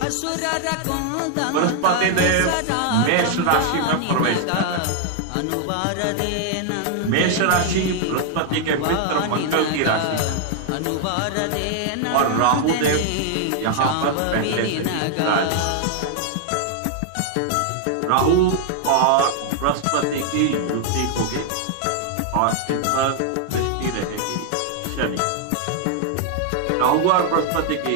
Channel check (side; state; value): both; different; correlation 0.00